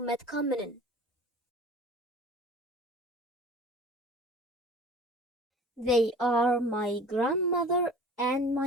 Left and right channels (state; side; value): normal; both; correlation 0.44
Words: They are my grandmother and